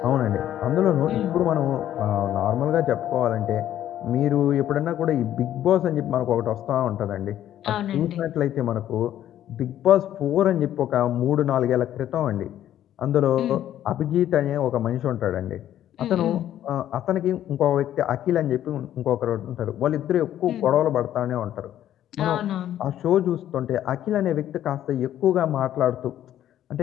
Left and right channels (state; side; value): quieter; right; 11.7 dB